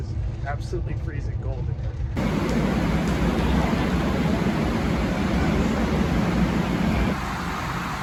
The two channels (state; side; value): identical; both; correlation 1.00